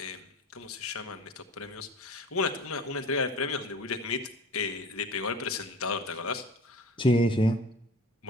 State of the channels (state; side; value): normal; both; correlation 0.40